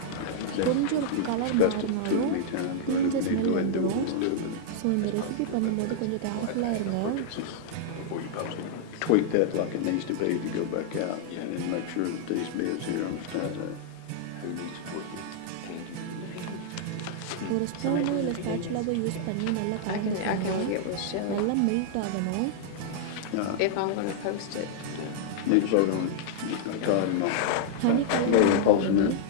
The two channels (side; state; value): both; different; correlation -0.01